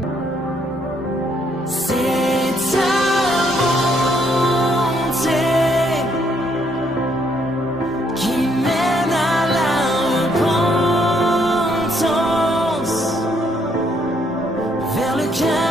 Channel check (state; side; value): normal; both; correlation 0.70